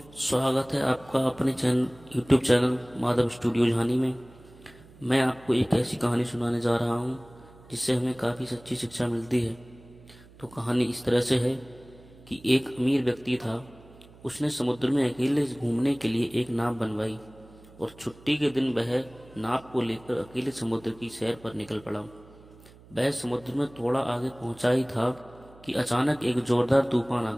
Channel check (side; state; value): right; noise; hum, 23 dB below the sound